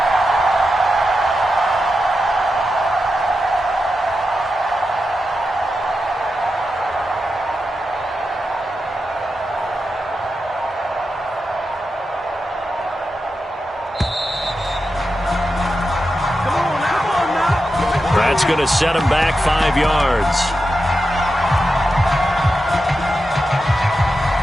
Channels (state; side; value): normal; both; correlation 0.89